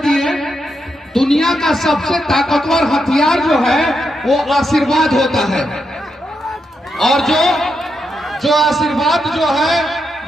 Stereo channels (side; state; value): both; normal; correlation 0.83